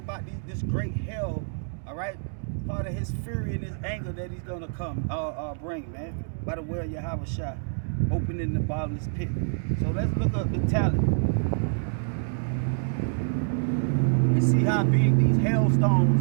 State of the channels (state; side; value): silent; left; digital silence